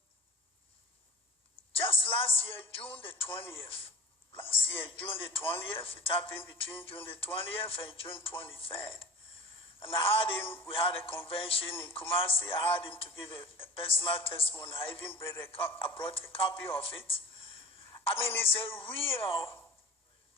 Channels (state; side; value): normal; both; correlation 0.36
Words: just last year, June the 20th. Last year, June the 20th, it happened between June the 20th and June 23rd. And we had a convention in Kumasi. I had him to give a personal testimony. I even brought a copy of it. I mean, it's a real